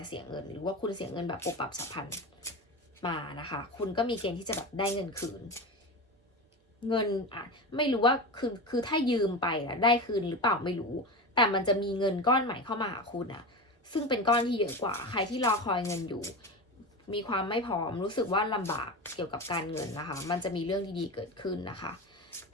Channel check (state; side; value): normal; both; correlation 0.24